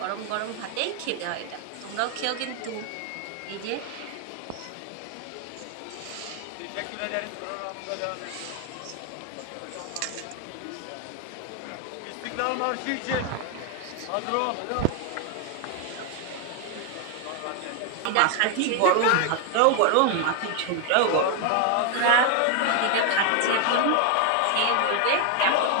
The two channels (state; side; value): different; both; correlation 0.00